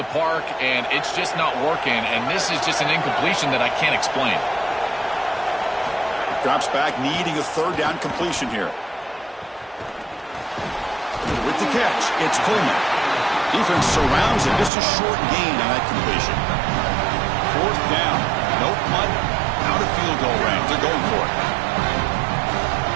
park and it's just not working, and this is just an incompletion that I can't explain. Drops back, needing a 3rd down completion here. With the catch, it's Coleman. Defense surrounds him. Just a short gain on that completion. 4th down. No punt. Out of field goal range. They're going for it.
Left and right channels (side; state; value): left; drops out; at 14.7 s